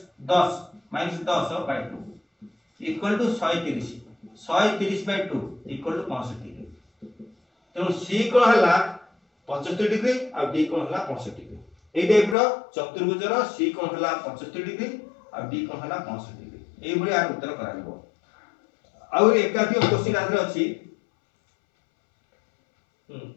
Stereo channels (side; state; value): right; drops out; at 12.4 s